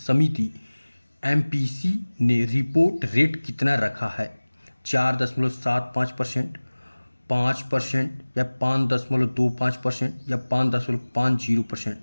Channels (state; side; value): inverted; both; correlation -1.00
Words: एमपीसी ने रिपोर्ट रेट कितना रखा है? 4.75%, 5% या 5.25% या 5.50%?